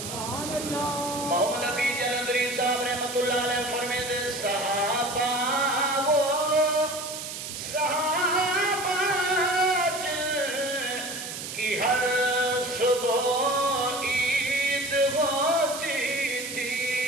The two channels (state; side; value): noise; right; hiss, 8 dB below the sound